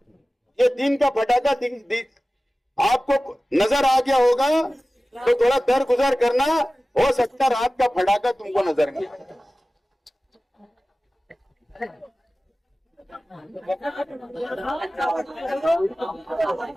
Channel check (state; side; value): normal; both; correlation 0.96